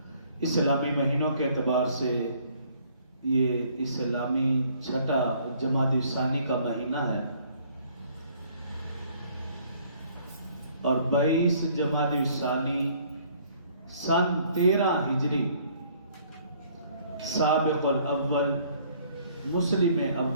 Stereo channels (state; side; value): inverted; both; correlation -0.60